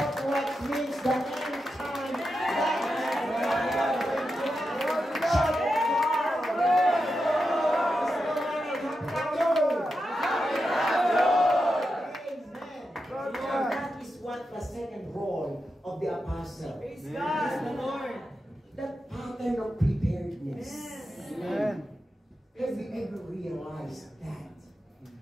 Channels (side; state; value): both; normal; correlation 0.88